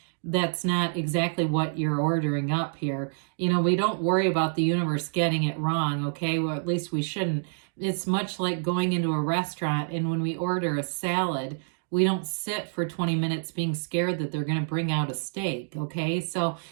that's not exactly what you're ordering up here. You know, we don't worry about the universe getting it wrong, okay? Well, at least we shouldn't. It's much like going into a restaurant, and when we order a salad, we don't sit for 20 minutes being scared that they're going to bring out a steak, okay? So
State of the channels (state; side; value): silent; left; digital silence